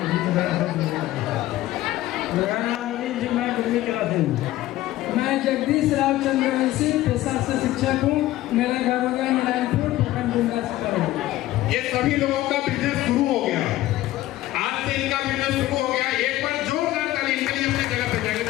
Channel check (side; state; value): right; quieter; 15.6 dB